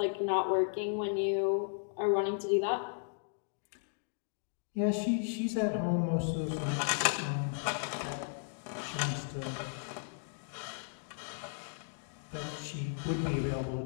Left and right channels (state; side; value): silent; right; digital silence